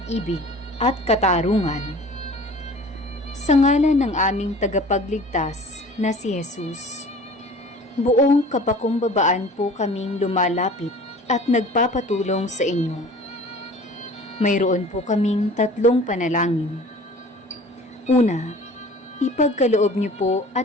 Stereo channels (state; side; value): normal; both; correlation 0.45